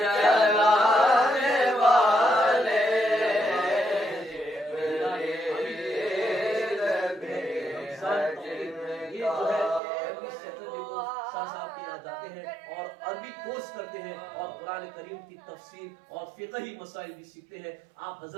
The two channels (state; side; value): drops out; left; at 9.8 s